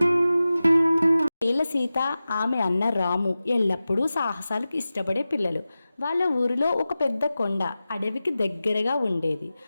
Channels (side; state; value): both; inverted; correlation -0.95